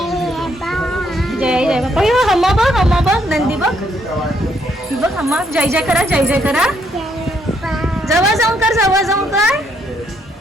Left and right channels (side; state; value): both; normal; correlation 0.72